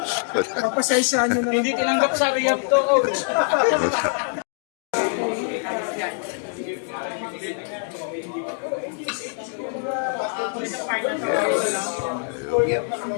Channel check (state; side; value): silent; right; 55 dB below the other